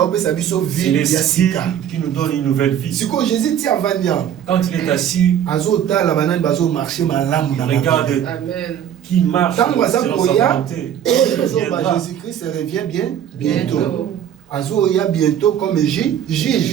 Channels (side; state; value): left; quieter; 9.8 dB